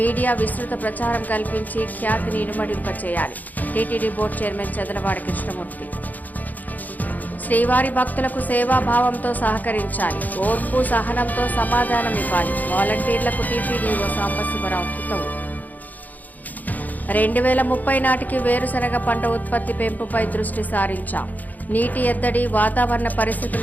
విస్తృత ప్రచారం కల్పించి ఖ్యాతిని ఇనుమడింపచేయాలి. TTD board chairman Chadalavada Krishnamurthy. శ్రీవారి భక్తులకు సేవాభావంతో సహకరించాలి. ఓర్పు సహనంతో సమాధానం ఇవ్వాలి. వాలంటీర్లకు టీటీడీఓ సాంబశివరావు హితవు. 2030 నాటికి వేరుశనగ పంట ఉత్పత్తి పెంపుపై దృష్టి సారించాం. నీటి ఎద్దడి, వాతావరణ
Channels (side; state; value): right; late; 0.081 ms